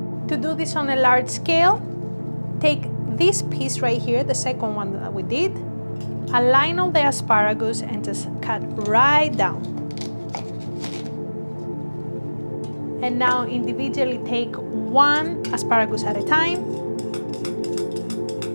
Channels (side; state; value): both; inverted; correlation -1.00